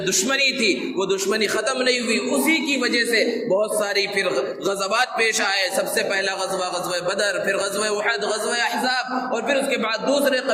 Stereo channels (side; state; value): both; identical; correlation 1.00